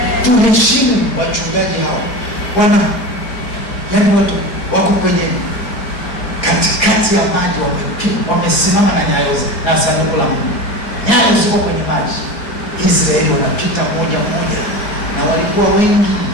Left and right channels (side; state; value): right; late; 4.6 ms